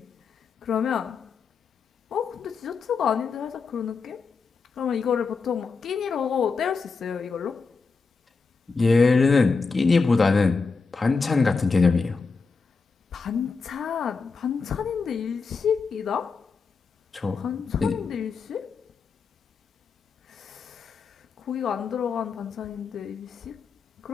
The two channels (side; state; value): right; quieter; 4.7 dB